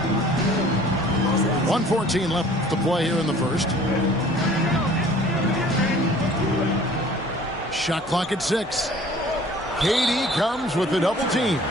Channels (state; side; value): normal; both; correlation 0.50